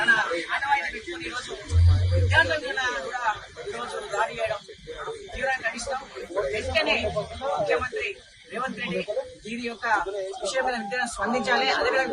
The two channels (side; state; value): both; identical; correlation 1.00